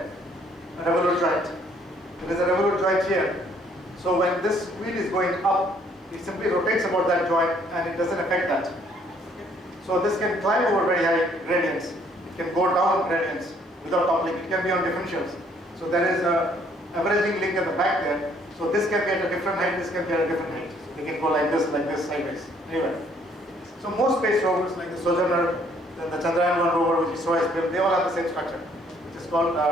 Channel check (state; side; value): normal; both; correlation 0.64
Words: a revolute joint. There is a revolute joint here. So when this wheel is going up, it simply rotates about that joint and it doesn't affect that. So this can climb over very high gradients. It can go down gradients without toppling. It can be on differentials. So there is a averaging link at the back there. So this can be at a different height, this can be at a different height. So they can go like this, sideways. Anyway. So most space rovers like the Sojourner, then the Chandrayaan-1 rover which is ISRO built, they all have the same structure, which is called